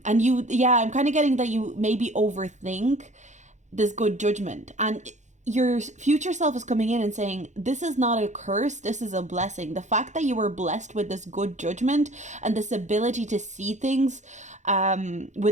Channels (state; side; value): late; left; 0.34 ms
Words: kind of getting that you maybe overthink this good judgment, and your future self is coming in and saying, this is not a curse, this is a blessing. The fact that you were blessed with this good judgment and this ability to see things